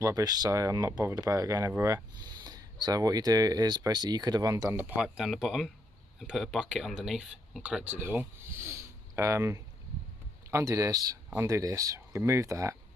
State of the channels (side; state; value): both; normal; correlation 0.76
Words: so I'm not bothered about it going everywhere. So what you do is basically you could have undone the pipe down the bottom and put a bucket underneath and collected it all. Undo this, remove that,